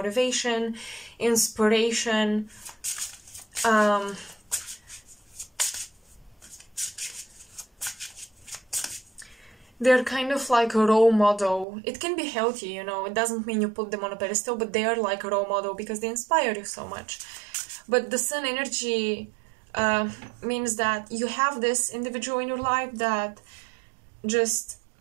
inspiration. They're kind of like a role model. It can be healthy, you know, it doesn't mean you put them on a pedestal, but they are like a role model because they inspire you so much. But the sun energy means that you have this individual in your life that just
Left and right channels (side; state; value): left; drops out; at 11.7 s